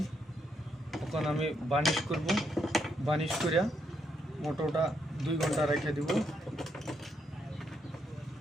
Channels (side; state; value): both; normal; correlation 0.78